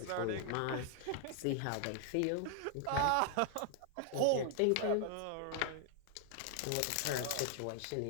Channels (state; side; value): different; both; correlation 0.00